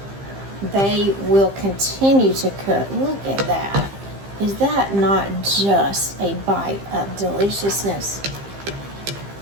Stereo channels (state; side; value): late; left; 15 ms